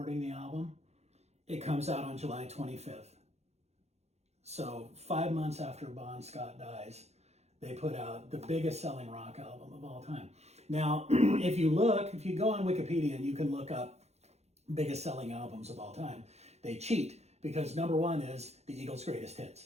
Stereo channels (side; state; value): left; late; 0.31 ms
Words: the album. It comes out on July 25th. So 5 months after Bon Scott dies, they put out the biggest selling rock album of all time. Now, if you go on Wikipedia and you can look up biggest selling albums of all time, they cheat because number 1 is the Eagles' greatest